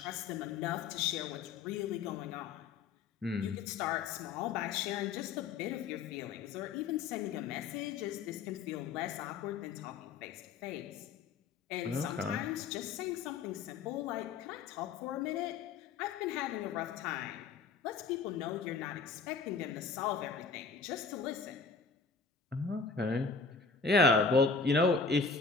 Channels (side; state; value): right; quieter; 5.0 dB